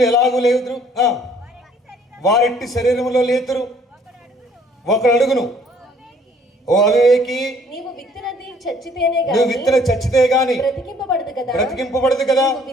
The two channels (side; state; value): both; normal; correlation 0.59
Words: ఎలాగూ లేదురు, వారెట్టి శరీరంలో లేతురు. ఒకడు అడుగును, ఓ అవివేకి, నీవు విత్తనది చచ్చితేనే నువ్వు విత్తన చచ్చితే గాని బ్రతికింపబడదు కదా.